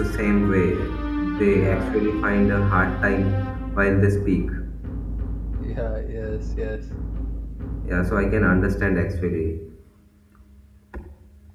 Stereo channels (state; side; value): identical; both; correlation 1.00